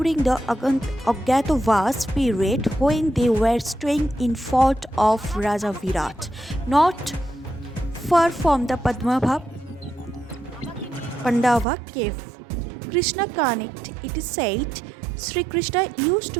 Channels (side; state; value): left; drops out; at 11.7 s